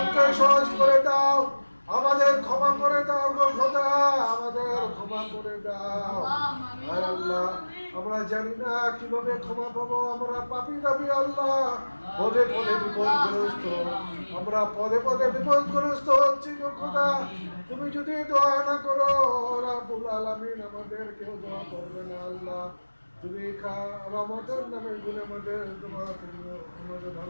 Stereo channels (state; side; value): inverted; both; correlation -1.00